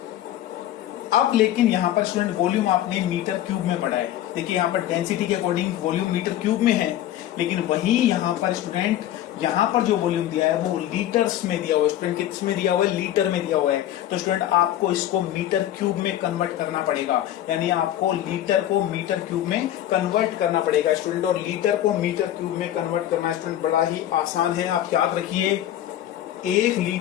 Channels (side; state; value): right; quieter; 12.5 dB